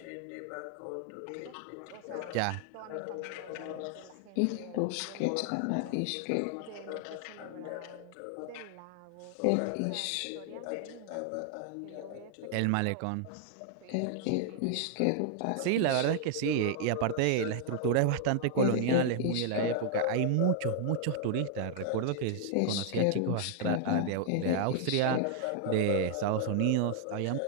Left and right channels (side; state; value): both; different; correlation 0.00